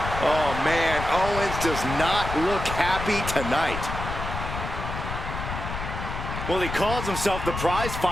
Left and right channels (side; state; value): left; noise; rumble, 6 dB below the sound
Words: Oh man, Owens does not look happy tonight. Well, he calls himself the prize